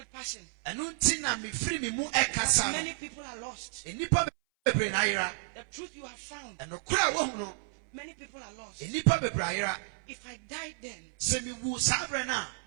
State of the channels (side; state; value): left; silent; 57 dB below the other